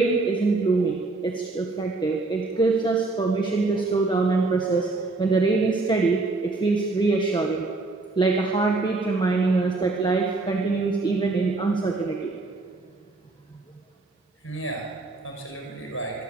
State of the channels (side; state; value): left; quieter; 3.4 dB